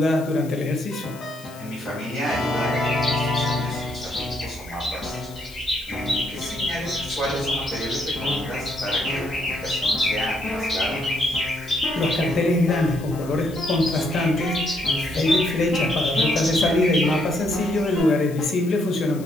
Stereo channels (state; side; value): noise; left; hiss, 20 dB below the sound